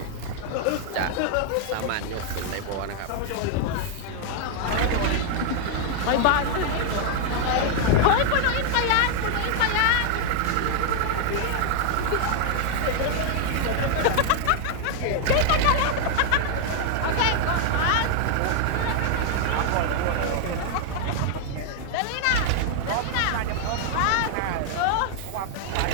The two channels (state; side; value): different; both; correlation 0.00